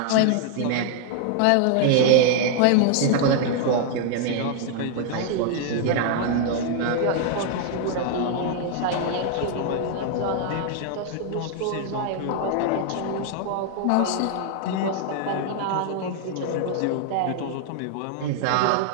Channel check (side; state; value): both; different; correlation 0.00